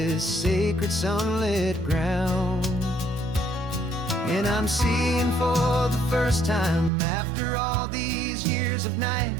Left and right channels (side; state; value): left; drops out; at 6.9 s